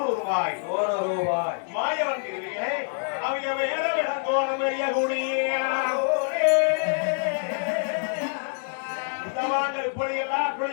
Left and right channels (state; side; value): silent; right; digital silence